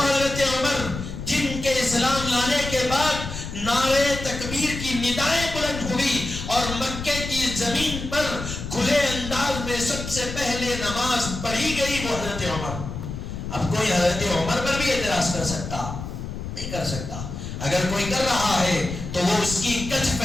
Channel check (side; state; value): left; noise; rumble, 7 dB below the sound